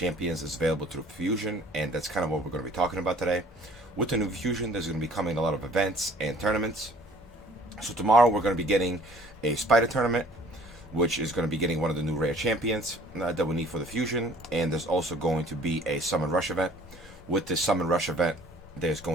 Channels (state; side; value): normal; both; correlation 0.52